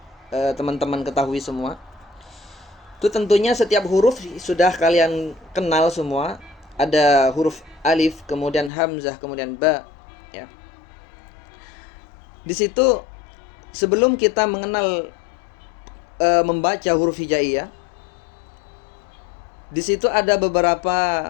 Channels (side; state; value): right; drops out; at 8.7 s